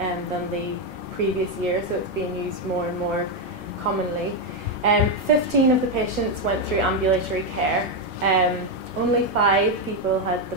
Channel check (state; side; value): normal; both; correlation 0.05